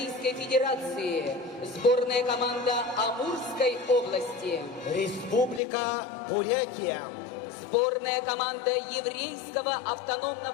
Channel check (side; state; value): right; drops out; at 5.6 s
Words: Федерации. Сборная команда Амурской области. Республика Бурятия. Сборная команда Еврейского